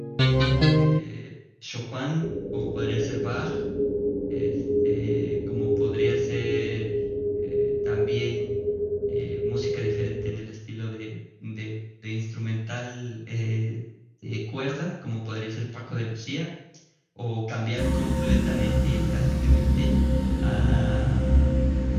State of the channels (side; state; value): both; identical; correlation 1.00